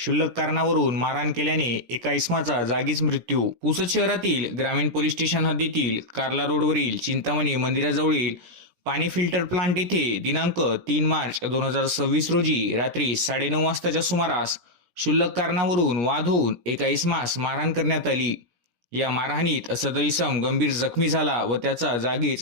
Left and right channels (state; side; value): late; left; 17 ms